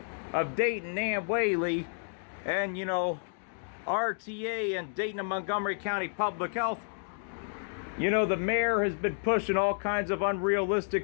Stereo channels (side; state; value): right; silent; digital silence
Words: of Dayton, Nan Whaley, and, you know, RTA and Dayton and Montgomery County Public Health. You know, the mayor has been pushing all kinds of